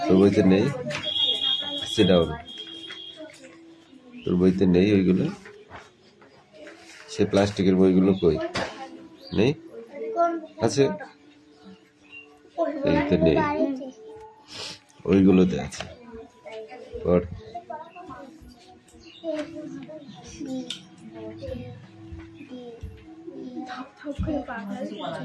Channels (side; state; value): both; identical; correlation 1.00